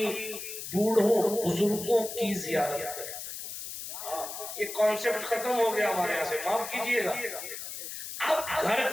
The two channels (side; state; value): left; noise; hiss, 8 dB below the sound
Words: بوڑھوں بزرگوں کی زیارت کریں۔ یہ کانسیپٹ ختم ہو گیا ہمارے یہاں سے، معاف کیجئے گا۔ اب گھر